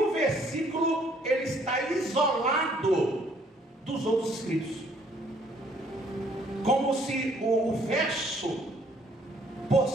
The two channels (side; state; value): both; normal; correlation 0.63